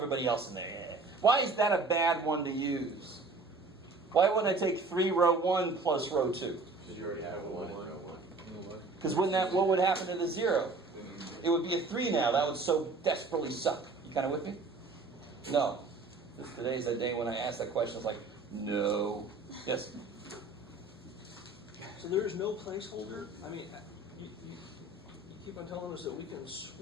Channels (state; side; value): quieter; left; 3.5 dB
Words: else in there. Yeah. Why is that a bad one to use? Why wouldn't I take 3 row 1 plus row 2? Because you already have a 1 in row 1. Because what would happen to the 0? It would be a 3 now. That would so desperately suck. You kind of with me? No. Today's the day when I ask that question. It's like, no. Yes? So there is no placeholder? I mean, you keep on telling us that we can